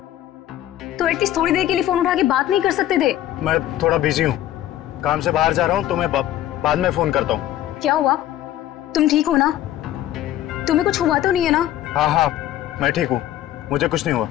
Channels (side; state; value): right; quieter; 12.9 dB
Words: तो एटलीस्ट थोड़ी देर के लिए फोन उठा के बात नहीं कर सकते थे? मैं थोड़ा बिजी हूँ, काम से बाहर जा रहा हूँ, तो मैं बाद में फोन करता हूँ। क्या हुआ? तुम ठीक हो ना? तुम्हें कुछ हुआ तो नहीं है ना? हाँ हाँ मैं ठीक हूँ, मुझे कुछ नहीं हुआ।